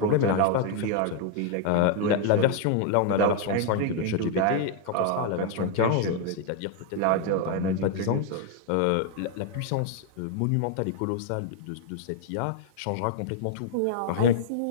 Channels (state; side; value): different; both; correlation 0.00